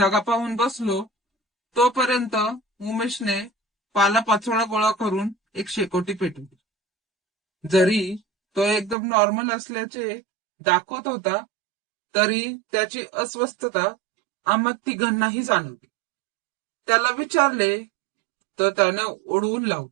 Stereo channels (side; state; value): left; drops out; at 9.0 s